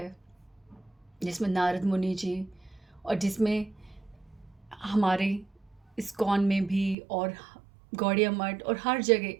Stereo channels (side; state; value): left; drops out; at 7.0 s